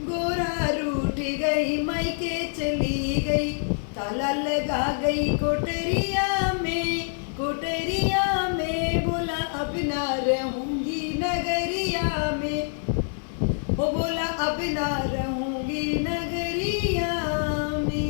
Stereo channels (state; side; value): silent; right; 61 dB below the other